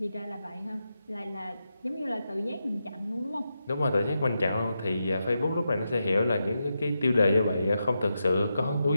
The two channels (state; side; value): inverted; both; correlation -0.87